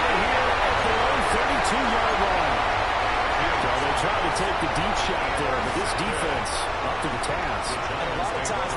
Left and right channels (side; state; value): both; identical; correlation 1.00